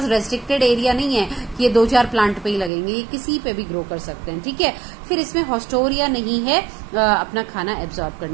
रेस्ट्रिक्टेड एरिया नहीं है कि ये 2-4 प्लांट पे ही लगेंगे, ये किसी पे भी ग्रो कर सकते हैं, ठीक है। फिर इसमें हॉस्टोरिया नहीं है अपना खाना एब्जॉर्ब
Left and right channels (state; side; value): drops out; left; at 2.7 s